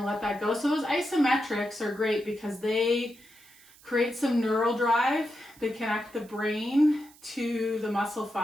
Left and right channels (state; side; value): noise; right; hiss, 25 dB below the sound